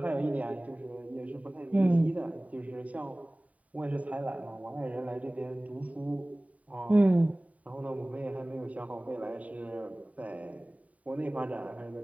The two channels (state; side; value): late; left; 0.069 ms